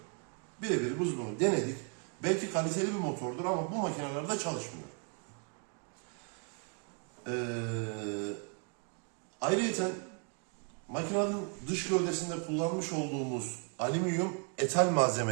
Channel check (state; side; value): quieter; left; 38.6 dB